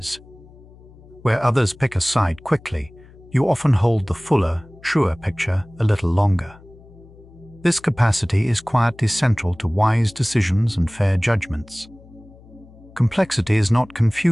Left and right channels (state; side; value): noise; left; hum, 23 dB below the sound